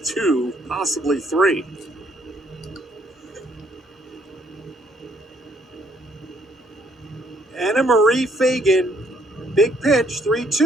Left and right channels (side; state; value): both; normal; correlation 0.67